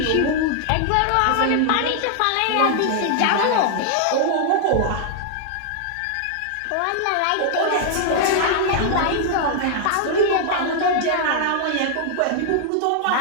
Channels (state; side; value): different; both; correlation 0.00